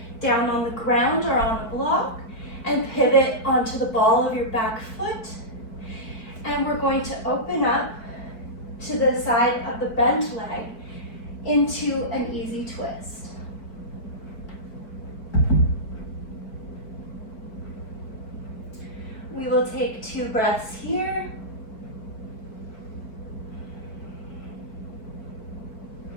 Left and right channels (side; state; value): right; late; 4.5 ms